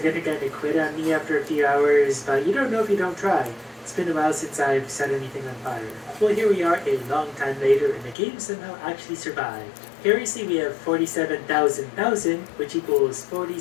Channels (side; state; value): right; drops out; at 8.2 s